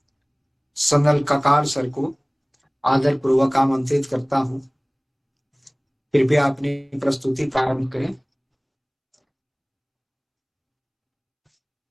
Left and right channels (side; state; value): both; identical; correlation 1.00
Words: सनल ककार सर को आदर पूर्वक आमंत्रित करता हूं। कृपया अपनी प्रस्तुति प्रारंभ करें।